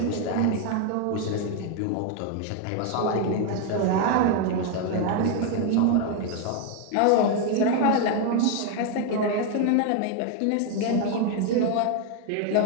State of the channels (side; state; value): both; different; correlation 0.01